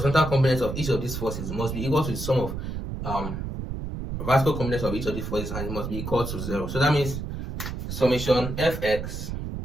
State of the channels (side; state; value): right; noise; rumble, 5 dB below the sound